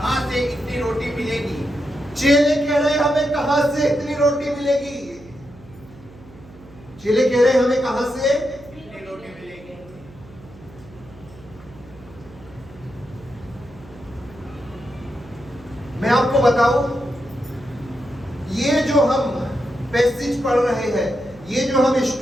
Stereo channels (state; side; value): noise; right; hum, 21 dB below the sound